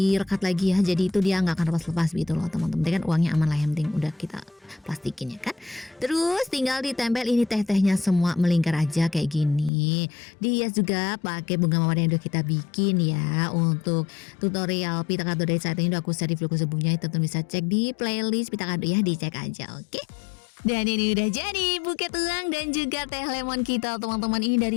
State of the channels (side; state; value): right; drops out; at 9.7 s